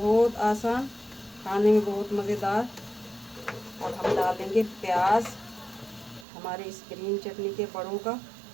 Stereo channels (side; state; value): left; drops out; at 6.2 s